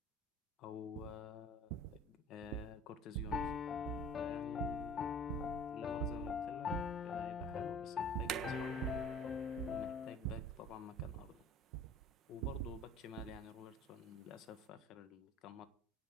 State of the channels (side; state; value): both; normal; correlation 0.47